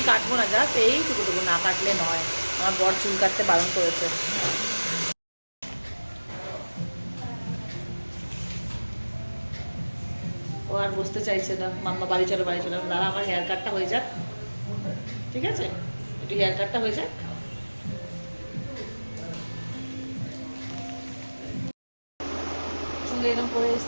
কাটবো না, জাস্ট এইটুকুটুকু, না কাটলে নয়। আমার বর চুল কাটতে বারণ করেছে। ও আর বসতে চাইছে না, মাম্মা বাড়ি চলো, বাড়ি চলো। দাঁড়া, আমার হেয়ার কাটটা হয়ে যাক, ঠিক আছে? একটু হেয়ার কাটটা হয়ে যাক। চুল এরকম করে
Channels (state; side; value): inverted; both; correlation -1.00